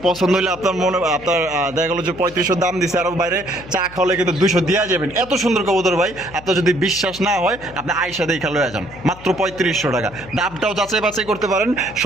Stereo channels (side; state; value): left; noise; hum, 19 dB below the sound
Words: পছন্দ হইলে আপনার মনে আপনার দেখা গেলো যে 3500 দাম দিছে, আরো বাইরে চা খাওয়ালে কিন্তু 200 দিয়া যাবেন। এত সুন্দর কবুতর ভাই, আপনার যদি বিশ্বাস না হয় আপনি আইসা দেখা লয়ে যান। মাত্র 3500 টাকা। দামটাও যাচাই বাছাই করতে পারেন,